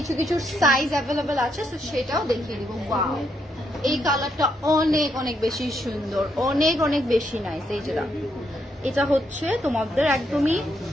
কিছু সাইজ অ্যাভেলেবেল আছে, সো সেটাও দেখিয়ে দিব। ওয়াও, এই কালারটা অনেক অনেক বেশি সুন্দর, অনেক অনেক বেশি নাইস। এই যে এটা হচ্ছে তোমাদের একদমই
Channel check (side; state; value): both; normal; correlation 0.77